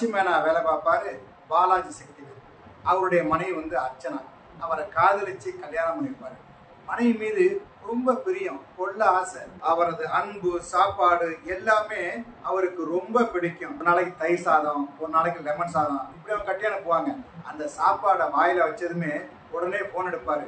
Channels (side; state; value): both; identical; correlation 1.00